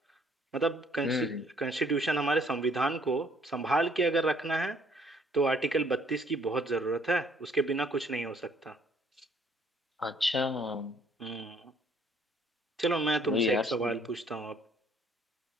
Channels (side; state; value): both; normal; correlation 0.63